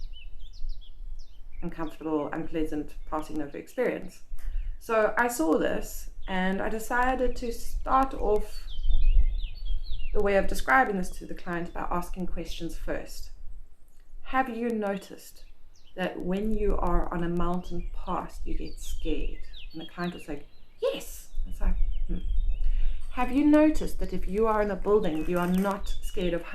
uncomfortable, unpleasant passing over experience. So I saw this and I decided to start off the way of describing this to the client by asking questions first. Have you noticed that when you are on a mountain pass, you get scared? And the client was like, yes. It's like, Have you noticed that if you are in a building, you are not scared of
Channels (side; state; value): both; identical; correlation 1.00